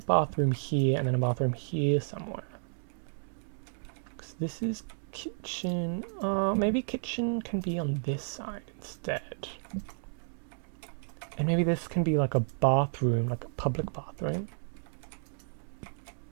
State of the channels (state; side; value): silent; left; 56 dB below the other